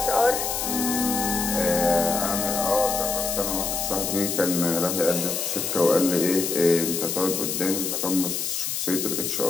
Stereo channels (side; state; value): left; noise; hiss, 2 dB below the sound